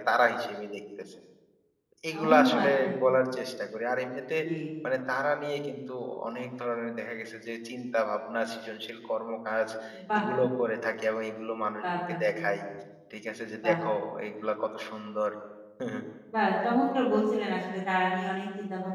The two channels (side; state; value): both; identical; correlation 1.00